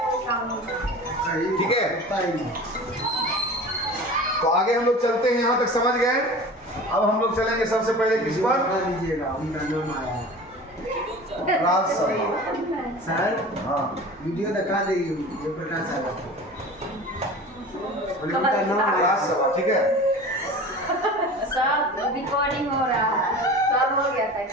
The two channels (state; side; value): normal; both; correlation 0.37